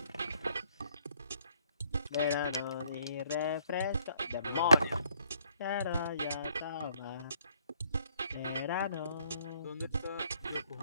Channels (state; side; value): inverted; both; correlation -0.66